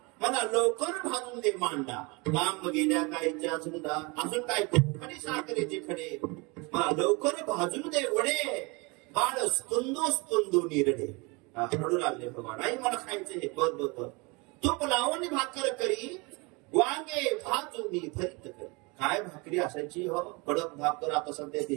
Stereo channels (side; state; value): left; quieter; 28.0 dB